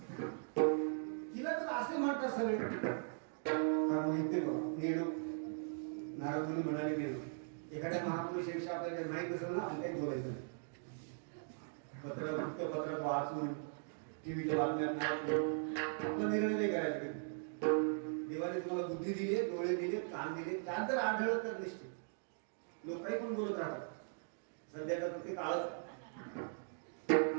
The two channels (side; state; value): left; silent; digital silence